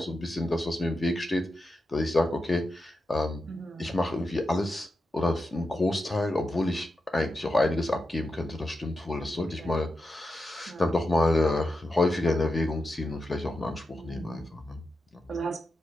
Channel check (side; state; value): both; normal; correlation 0.89